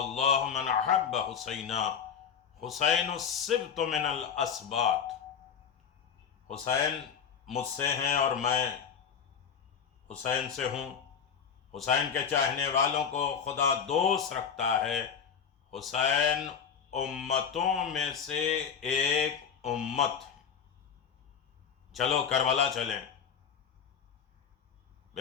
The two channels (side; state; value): right; quieter; 7.2 dB